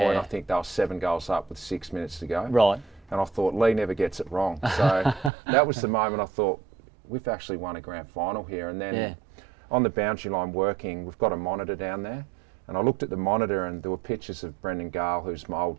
I think they were 7 goals up with 6 minutes to go. Right. And I thought, Lee never gets it wrong. So that was the moment I thought, we've actually won a grand final here. And then on the boundary line working, we've got a monitor down there. And I looked at the monitor and there were pictures of Brendan Gale, who's my old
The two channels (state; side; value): drops out; left; at 5.3 s